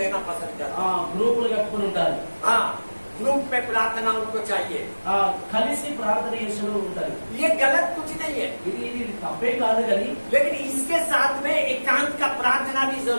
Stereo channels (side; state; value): both; inverted; correlation -1.00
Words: पसंद करता है। గ్రూపులు కట్టుకుని ఉంటారు. हाँ, ग्रुप में प्रार्थना उनको चाहिए। కలిసి ప్రార్థన చేస్తూ ఉంటారు. ये गलत कुछ नहीं है, ఇది తప్పే కాదు, కానీ लेकिन इसके साथ में एकांत का प्रार्थना भी